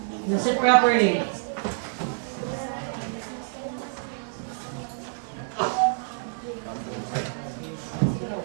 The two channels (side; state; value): left; silent; digital silence